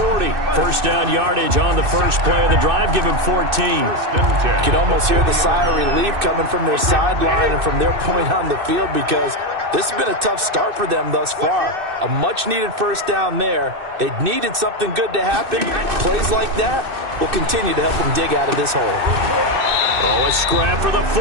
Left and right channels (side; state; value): left; late; 2.6 ms